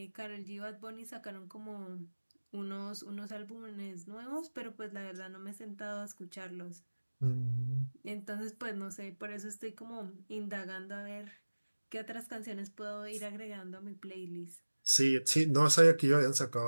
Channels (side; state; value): both; inverted; correlation -1.00